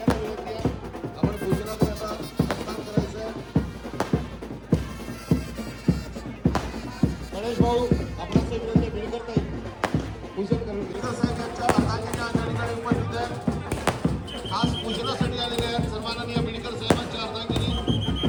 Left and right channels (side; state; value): both; identical; correlation 1.00